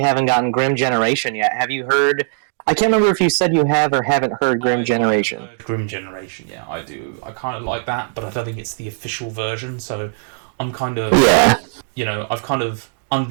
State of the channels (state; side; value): silent; left; digital silence